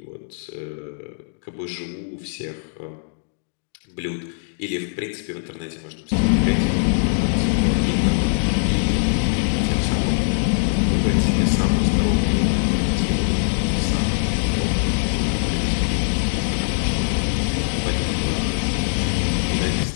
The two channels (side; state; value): right; silent; digital silence